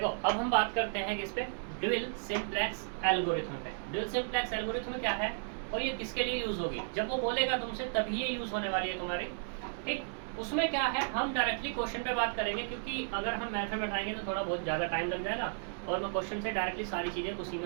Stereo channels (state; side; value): silent; left; digital silence